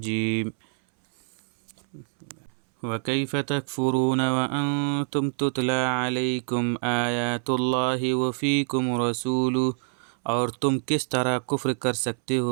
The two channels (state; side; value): silent; left; 61 dB below the other